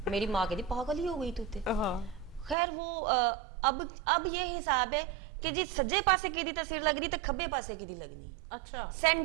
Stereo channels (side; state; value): left; drops out; at 2.6 s